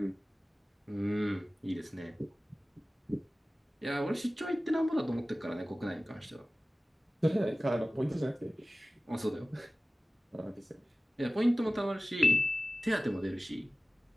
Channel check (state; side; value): normal; both; correlation 0.97